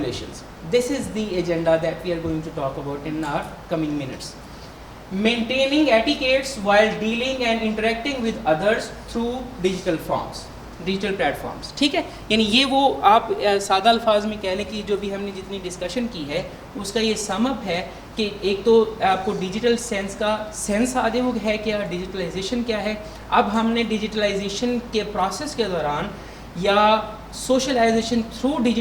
This is the agenda that we are going to talk about in our coming minutes. Maintaining etiquettes while dealing and interacting with others through digital forms, digital platforms. ٹھیک ہے. یعنی یہ وہ آپ سادہ الفاظ میں کہہ لیں کہ جو بھی ہم نے جتنی ڈسکشن کی ہے اس کا یہ سم اپ ہے کہ ایک تو آپ کو ڈیجیٹل سینس کا سینس آدھے وہ ہے کیا, ڈیجیٹلائزیشن کیا ہے. اب ہم نے ڈیجیٹلائزیشن کے پروسیس کے دوران یا سوشلائزیشن تھرو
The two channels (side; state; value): both; identical; correlation 1.00